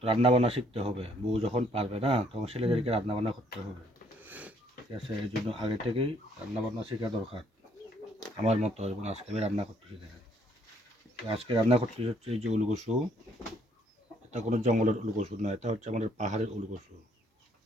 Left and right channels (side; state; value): both; normal; correlation 0.65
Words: রান্না বান্না শিখতে হবে। বউ যখন পারবে না তখন ছেলেদেরকে রান্না বান্না করতে হবে, ঠিক আছে? এই জন্য আগে থেকেই রান্না বান্না শেখা দরকার আমার মতো। এবং আজকে আমি রান্না করতেছি, দেখেন আজকে রান্না করতেছি হচ্ছে এই যে উলকসু। এটা কোনো জঙ্গলের উলকসু না, এটা হচ্ছে আমাদের পাহাড়ের উলকসু।